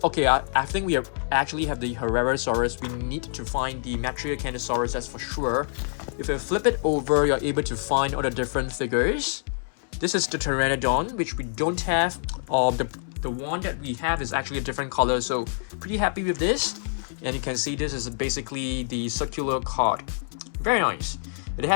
okay, I think we actually have the Herrerasaurus. We need to find the Metricanthosaurus, that's for sure. If you flip it over, you're able to find all the different figures. This is the Pteranodon, which we don't have. The one that we have is actually a different color, so pretty happy with this. And you can see this is basically the circular card. Very nice. It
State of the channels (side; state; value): right; silent; 61 dB below the other